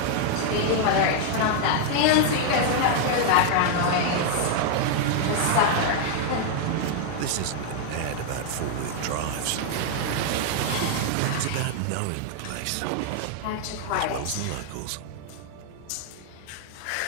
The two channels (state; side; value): different; both; correlation 0.00